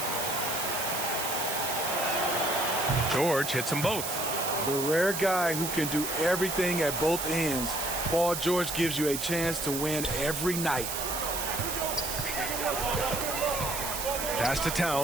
George hits them both. The rare guy who can do everything at both ends. Paul George gives you a chance to win every night. Pass to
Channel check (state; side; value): noise; right; hiss, 4 dB below the sound